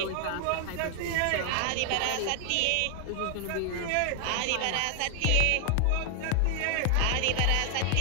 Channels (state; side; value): different; both; correlation 0.00